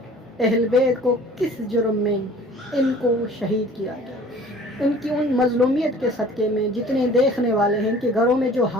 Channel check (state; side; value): normal; both; correlation 0.49